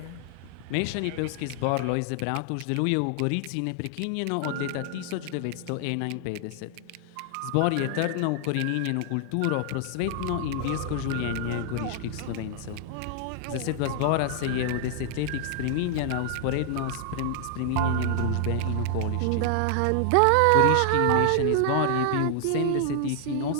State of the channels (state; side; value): different; both; correlation 0.00